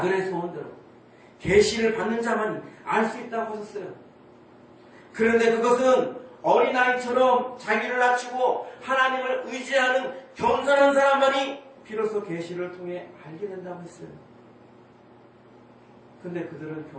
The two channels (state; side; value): identical; both; correlation 1.00